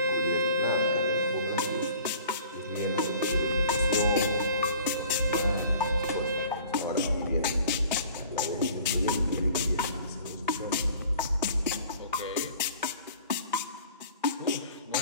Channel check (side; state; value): both; inverted; correlation -0.49